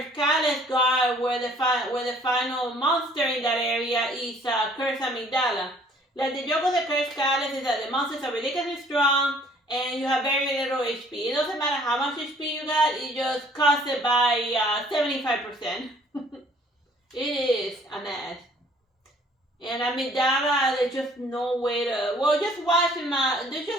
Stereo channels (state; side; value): normal; both; correlation 0.57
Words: Caliph god where the final monster in that area is a cursed amygdala. Like the joke of the cursed Caliph is that the monsters are ridiculously strong and you have very little HP. It doesn't matter how much HP you got, it just costs it by 75%. It is a mess. And amygdala, there's just no way to. Well, just watch